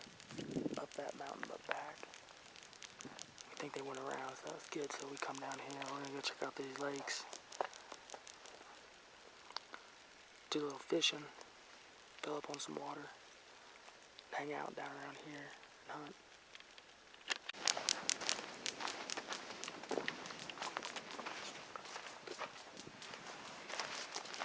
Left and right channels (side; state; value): both; identical; correlation 1.00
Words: up that mountain but back. I think they went around, so that was good. So we come down here, we're gonna go check out these lakes. Do a little fishing, fill up on some water, hang out down around here and hunt.